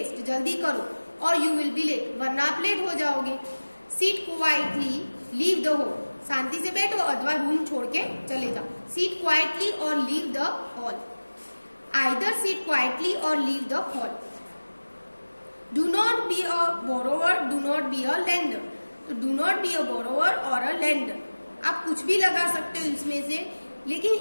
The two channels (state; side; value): inverted; both; correlation -1.00